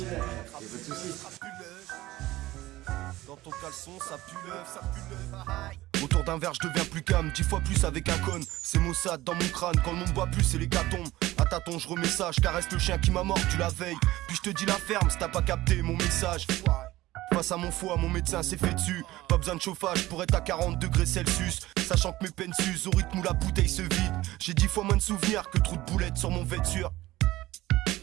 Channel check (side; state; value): left; quieter; 17.1 dB